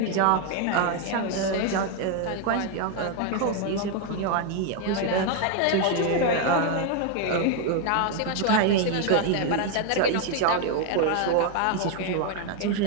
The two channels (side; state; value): both; different; correlation 0.01